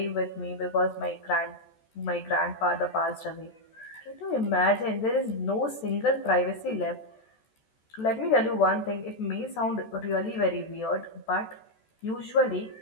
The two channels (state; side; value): late; right; 14 ms